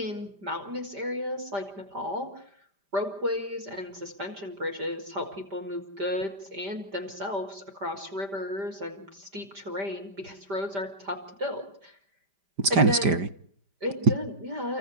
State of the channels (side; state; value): left; late; 5.1 ms